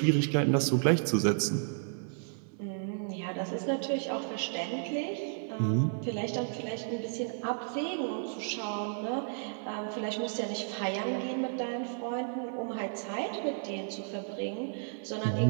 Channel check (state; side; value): silent; left; digital silence